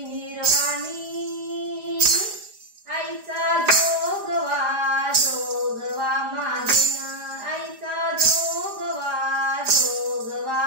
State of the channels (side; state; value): left; late; 4.9 ms